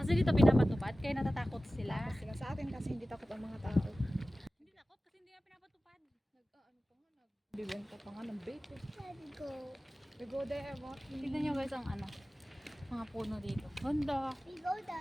dito pinapatupad, kaya natatakot sila. Tapos sila sa atin kasi hindi takot ang mga tao. Hindi takot kasi hindi nga pinapatupad. Ano pa nga, nagbibenta pa nga ng vape. Let's go. We go there, walking. Tignan nyo guys ang ano, mga puno dito. Ganda. We go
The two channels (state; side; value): normal; both; correlation 0.96